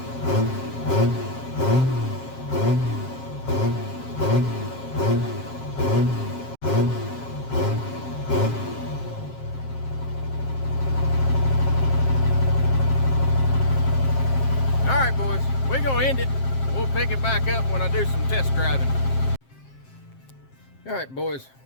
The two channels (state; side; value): late; right; 7.5 ms